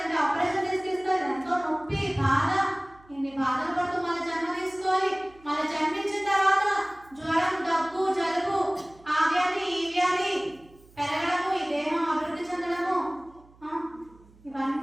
అంటే ఆపరేషన్ తీసుకొస్తారు, ఎంతో నొప్పి బాధ. ఇన్ని బాధలు పడుతూ మన జన్మ తీసుకోవాలి. మన జన్మించిన తర్వాత జ్వరం, దగ్గు, జలుబు, ఆ వ్యాధి ఈ వ్యాధి పెరగడము, ఈ దేహం అభివృద్ధి చెందడము,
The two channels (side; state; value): right; noise; hum, 27 dB below the sound